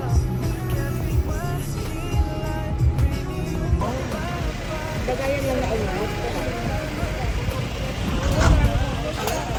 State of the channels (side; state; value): both; identical; correlation 1.00